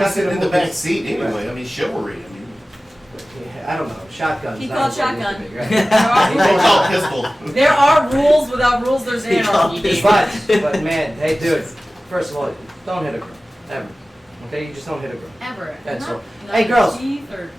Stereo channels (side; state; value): both; normal; correlation 0.97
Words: he it's sitting in nothing the to back seat anyway? I mean, chivalry. I mean, I don't know. Shotguns. He not called as what it shotgun. used to be, right? they call pistol. There are rules. Without rules, there's anarchy. But man, hey dude, first of all, don't hit a girl. Ever. Okay, you just don't hit a girl. Ever. That's Not- all. not Hey girls, teeth or-